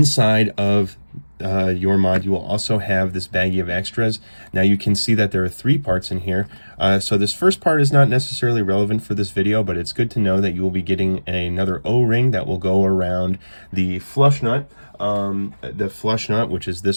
of your mod, you will also have this baggie of extras. Now you can see that there are 3 parts in here. So this first part is not necessarily relevant for this video, but it's good to know that you will be getting another O-ring that will go around the flush nut. Which is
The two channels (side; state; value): both; inverted; correlation -1.00